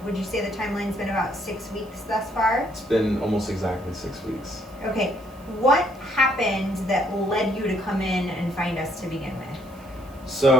Would you say the timeline's been about 6 weeks thus far? It's been almost exactly 6 weeks. Okay. What happened that led you to come in and find us to begin with?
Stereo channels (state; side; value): noise; right; hiss, 27 dB below the sound